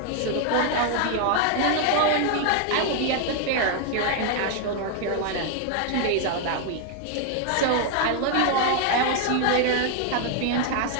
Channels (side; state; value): both; different; correlation 0.00